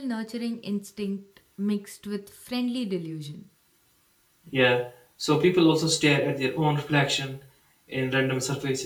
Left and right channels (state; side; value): identical; both; correlation 1.00